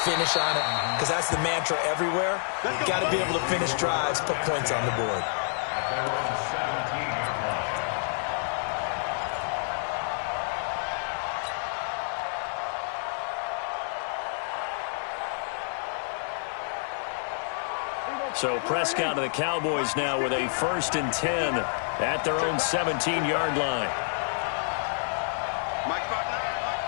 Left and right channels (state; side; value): silent; right; digital silence